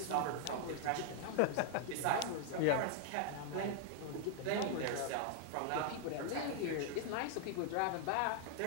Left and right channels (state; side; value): different; both; correlation 0.00